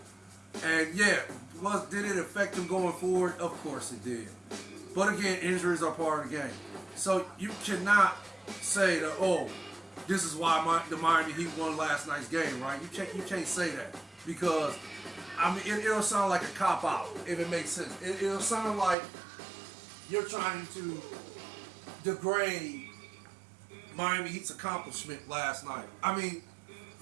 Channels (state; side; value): drops out; left; at 18.9 s